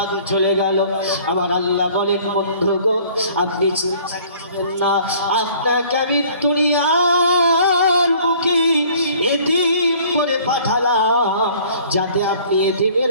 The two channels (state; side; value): inverted; both; correlation -0.53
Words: চলে গেল। আমার আল্লাহ বলেন, বন্ধু গো আপনি চিন্তা করবেন না, আপনাকে আমি দুনিয়ার বুকে এতিম করে পাঠালাম যাতে আপনি এতিমের